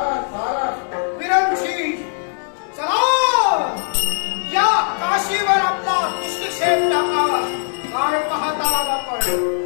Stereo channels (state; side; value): silent; right; digital silence